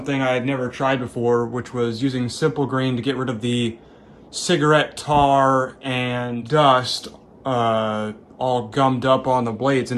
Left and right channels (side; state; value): both; identical; correlation 1.00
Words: I had never tried before, which was using simple green to get rid of the cigarette tar and dust all gummed up on the blades,